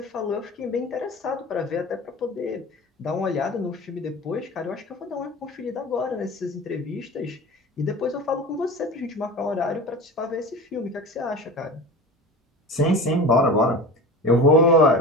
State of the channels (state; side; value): normal; both; correlation 0.33